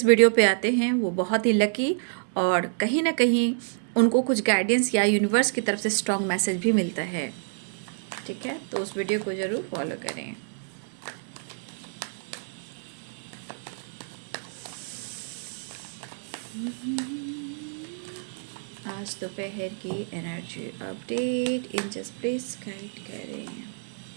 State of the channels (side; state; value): left; silent; digital silence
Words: वीडियो पे आते हैं वो बहुत ही लकी, और कहीं ना कहीं उनको कुछ गाइडेंस या यूनिवर्स की तरफ से स्ट्रॉन्ग मैसेज भी मिलता है। ठीक है, तो उस वीडियो को ज़रूर फॉलो करें। आज दोपहर की energy update angels please guide करें।